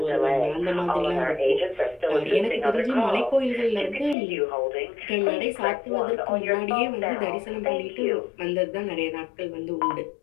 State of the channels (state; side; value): drops out; right; at 4.2 s